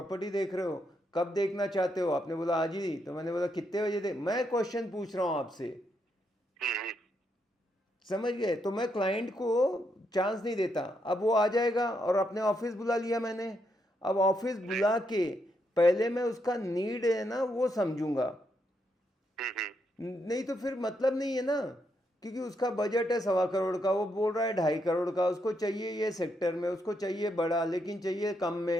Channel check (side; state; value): both; normal; correlation 0.79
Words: देख रहे हो, कब देखना चाहते हो? आपने बोला आज ही, तो मैंने बोला कितने बजे दे, मैं क्वेश्चन पूछ रहा हूँ आपसे, हम्म। समझ गए? तो मैं क्लाइंट को चांस नहीं देता। अब वो आ जाएगा, और अपने ऑफिस बुला लिया मैंने। अब ऑफिस जी। बुला के पहले मैं उसका नीड है ना वो समझूंगा, हम्म। नहीं तो फिर मतलब नहीं है ना। क्योंकि उसका बजट है 1.25 करोड़ का, वो बोल रहा है 2.5 करोड़ का, उसको चाहिए ये सेक्टर में, उसको चाहिए बड़ा, लेकिन चाहिए कम